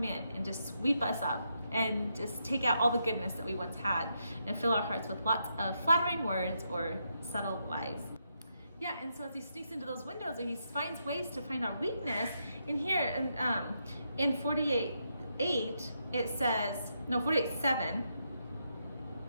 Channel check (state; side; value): inverted; both; correlation -0.81